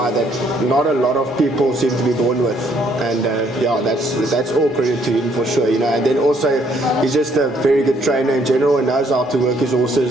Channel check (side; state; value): both; normal; correlation 0.67